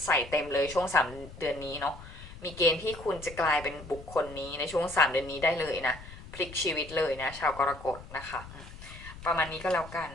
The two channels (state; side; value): noise; left; rumble, 16 dB below the sound